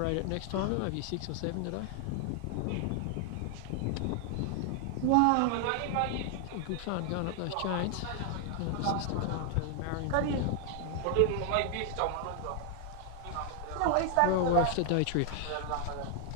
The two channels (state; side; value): different; both; correlation 0.00